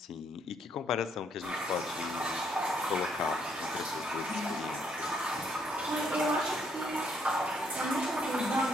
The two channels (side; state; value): both; normal; correlation 0.71